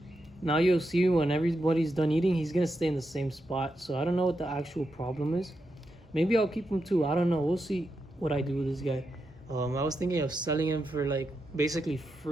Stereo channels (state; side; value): normal; both; correlation 0.86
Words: Now you'll see when everybody's done eating, he's gonna stay in the same spot. So I don't know what the actual problem is. Maybe I'll keep him too. I don't know. We'll see what I do with this guy. I was thinking of selling him for like basically